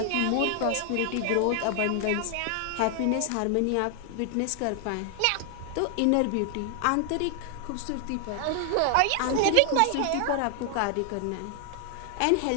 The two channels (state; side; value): different; both; correlation 0.00